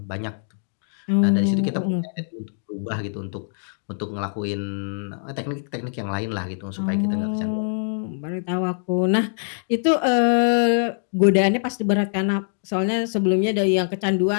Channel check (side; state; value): right; silent; digital silence